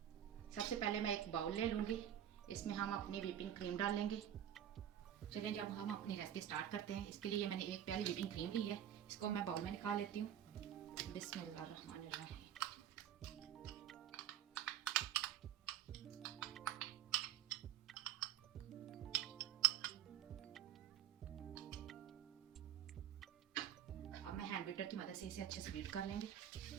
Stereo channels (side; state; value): left; quieter; 10.6 dB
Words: सबसे पहले मैं एक बाउल ले लूँगी, इसमें हम अपनी व्हिपिंग क्रीम डाल लेंगे। चलिए जब हम अपनी रेसिपी स्टार्ट करते हैं। इसके लिए मैंने एक प्याली व्हिपिंग क्रीम ली है, इसको मैं बाउल में निकाल लेती हूँ। बिस्मिल्लाहिर्रहमानिर्रहीम। अब मैं हैंड बीटर की मदद से इसे अच्छे से बीट कर लेंगे।